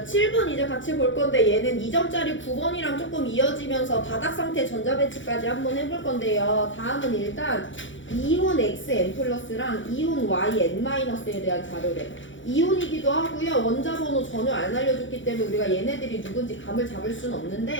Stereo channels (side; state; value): right; late; 0.56 ms